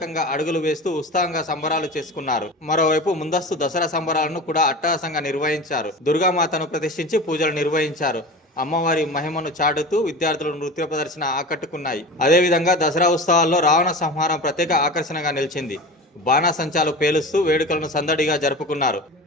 అడుగులు వేస్తూ ఉత్సాహంగా సంబరాలు చేసుకున్నారు. మరోవైపు ముందస్తు దసరా సంబరాలను కూడా అట్టహాసంగా నిర్వహించారు. దుర్గామాతను ప్రతిష్ఠించి పూజలు నిర్వహించారు. అమ్మవారి మహిమను చాటుతూ విద్యార్థులు నృత్య ప్రదర్శన ఆకట్టుకున్నాయి. అదేవిధంగా దసరా ఉత్సవాల్లో రావణ సంహారం ప్రత్యేక ఆకర్షణగా నిలిచింది. బాణాసంచాలు పేలుస్తూ వేడుకలను సందడిగా జరుపుకున్నారు.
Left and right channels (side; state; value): both; normal; correlation 0.32